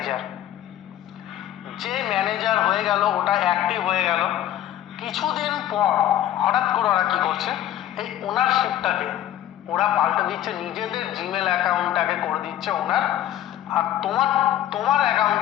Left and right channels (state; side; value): quieter; right; 12.1 dB